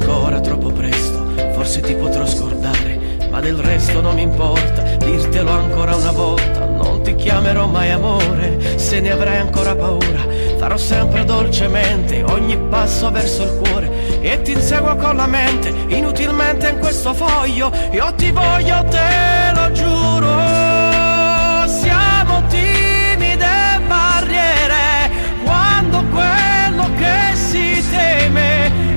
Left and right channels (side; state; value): both; inverted; correlation -1.00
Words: troppo presto, forse ti potrò scordare, ma del resto non mi importa, dirtelo ancora una volta, non ti chiamerò mai amore, se ne avrai ancora paura, farò sempre dolcemente ogni passo verso il cuore e ti inseguo con la mente, inutilmente in questo foglio, io ti voglio, te lo giuro. Siamo timide barriere, quando quello che si teme